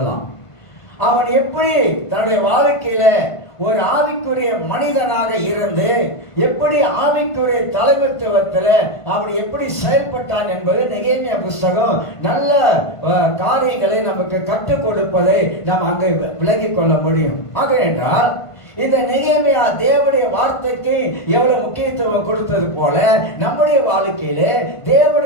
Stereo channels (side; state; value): right; late; 1.5 ms